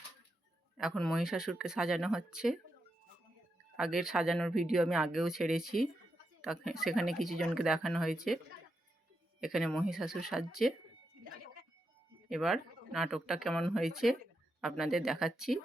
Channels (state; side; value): normal; both; correlation 0.85